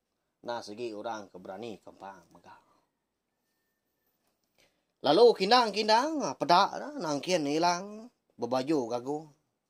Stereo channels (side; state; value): both; identical; correlation 1.00